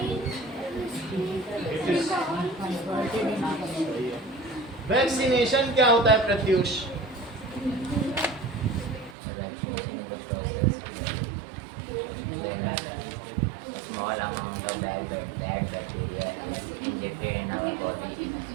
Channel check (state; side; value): drops out; left; at 9.2 s